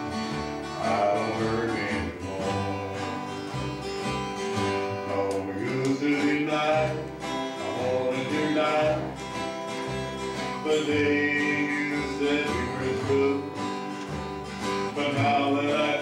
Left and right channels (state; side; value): identical; both; correlation 1.00